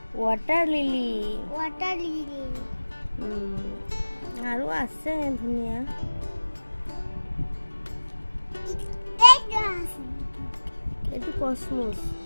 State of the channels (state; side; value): inverted; both; correlation -1.00